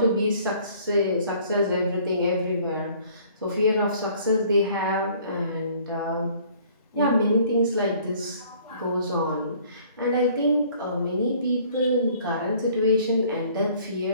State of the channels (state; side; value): inverted; both; correlation -0.56